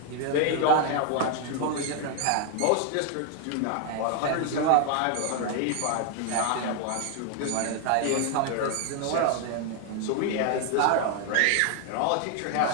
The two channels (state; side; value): different; both; correlation 0.00